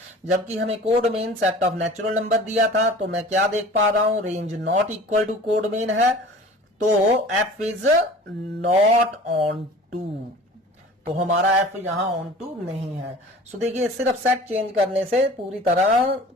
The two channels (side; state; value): both; normal; correlation 0.43